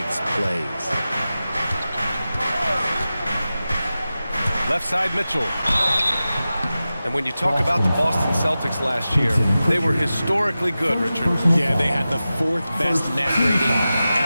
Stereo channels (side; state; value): both; inverted; correlation -0.94